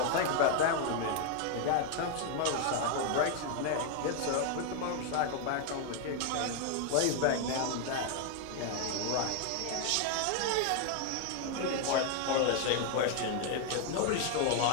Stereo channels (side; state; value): both; different; correlation 0.00